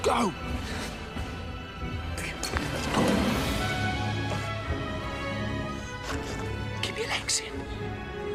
go. Keep your legs in.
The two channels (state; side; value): identical; both; correlation 1.00